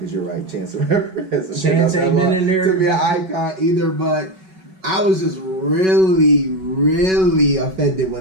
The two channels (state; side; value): late; left; 5.3 ms